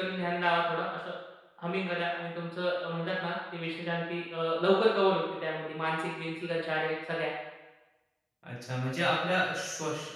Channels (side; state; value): both; identical; correlation 1.00